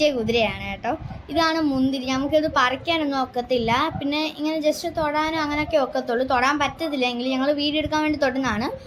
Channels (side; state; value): both; identical; correlation 1.00